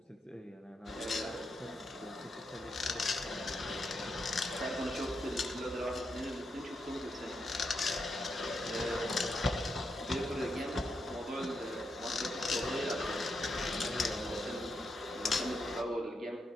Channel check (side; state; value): both; normal; correlation 0.83